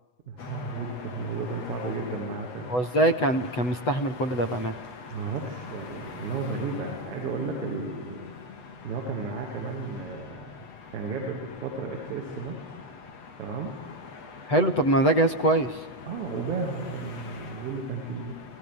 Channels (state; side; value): late; right; 8.0 ms